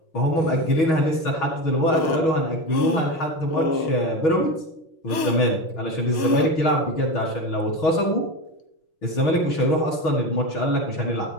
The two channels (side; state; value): right; late; 6.5 ms